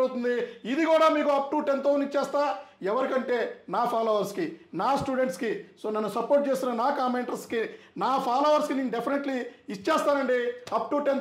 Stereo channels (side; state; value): both; identical; correlation 1.00